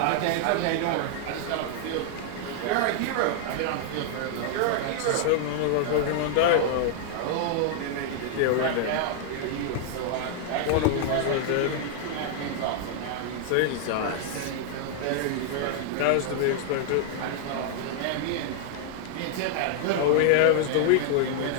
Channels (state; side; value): different; both; correlation 0.00